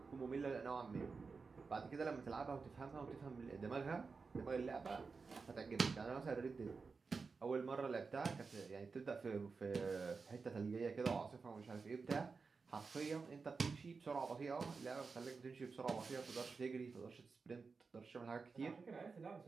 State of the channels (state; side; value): quieter; left; 4.7 dB